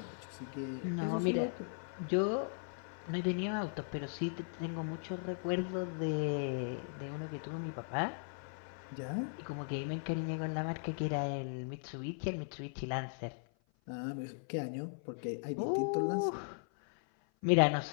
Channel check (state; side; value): silent; right; 53 dB below the other